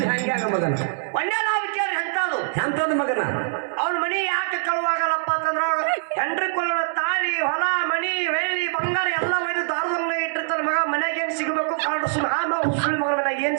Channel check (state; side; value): silent; left; digital silence